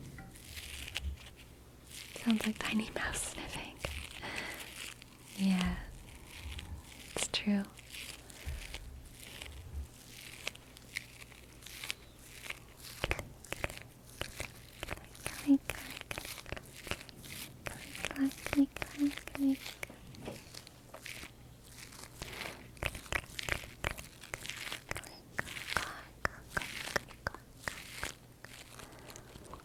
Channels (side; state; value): both; identical; correlation 1.00